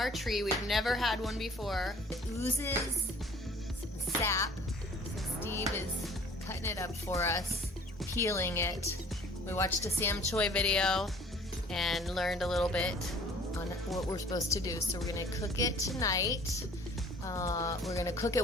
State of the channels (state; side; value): normal; both; correlation 0.52